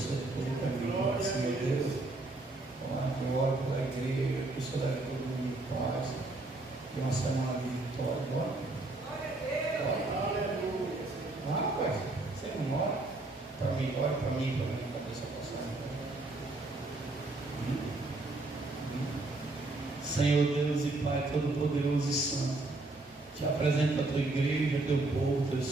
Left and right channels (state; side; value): quieter; left; 3.0 dB